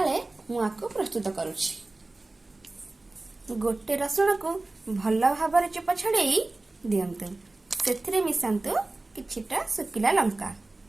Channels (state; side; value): quieter; left; 3.1 dB